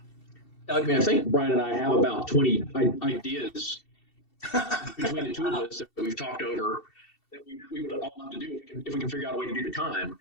I mean, I think Brian and I have about 20 ideas between the two of us that we've talked over that we would all love to do if we can figure out a way to do the time.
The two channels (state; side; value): late; right; 2.7 ms